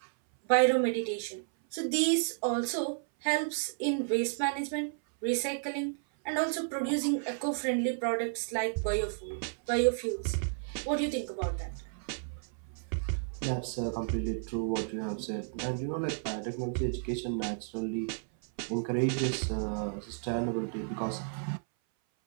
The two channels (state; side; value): silent; left; 56 dB below the other